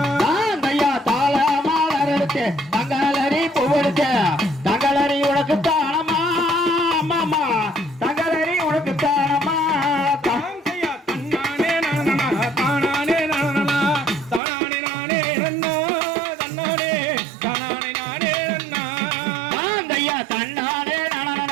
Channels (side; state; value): left; drops out; at 14.4 s